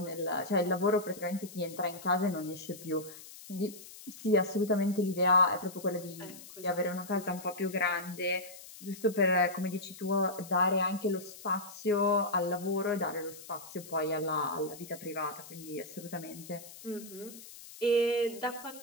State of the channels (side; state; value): left; noise; hiss, 16 dB below the sound